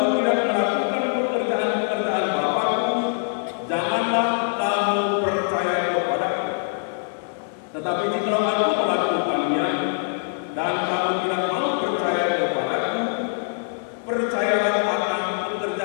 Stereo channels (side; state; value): right; silent; digital silence